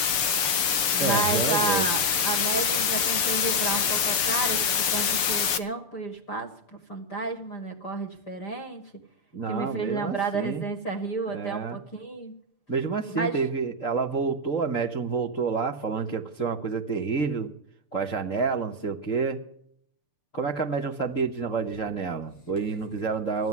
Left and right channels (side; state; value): right; late; 6.8 ms